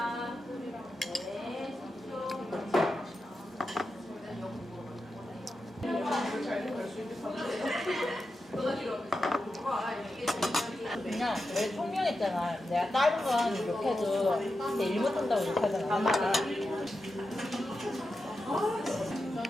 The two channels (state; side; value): normal; both; correlation 0.89